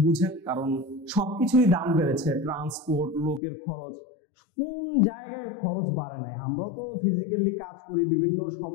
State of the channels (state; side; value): drops out; right; at 3.4 s